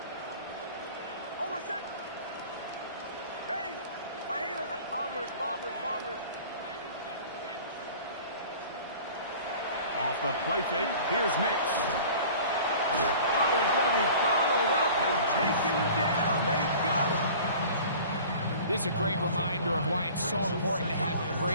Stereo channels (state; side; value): inverted; both; correlation -0.44